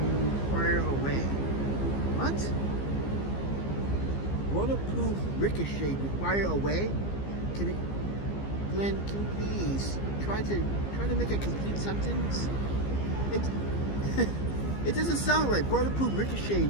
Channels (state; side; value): late; right; 15 ms